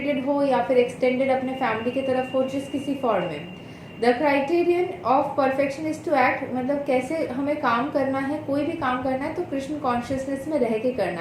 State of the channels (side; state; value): both; identical; correlation 1.00